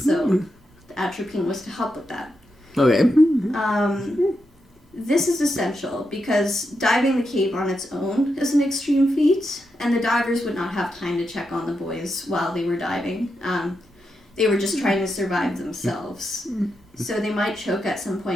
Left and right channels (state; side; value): normal; both; correlation 0.85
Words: So the atropine was to help with that. Okay. This is essential because diving the cave on its own is an extreme feat, and the divers would not have time to check on the boys while they were diving. They were just trying to survive themselves. So they might choke at some